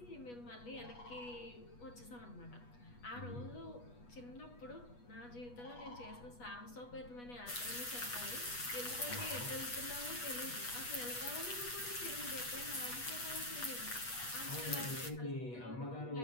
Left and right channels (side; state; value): right; late; 8.2 ms